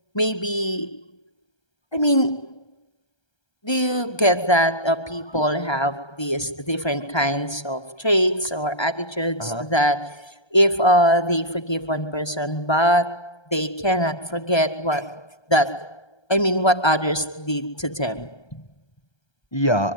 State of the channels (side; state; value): right; late; 1.3 ms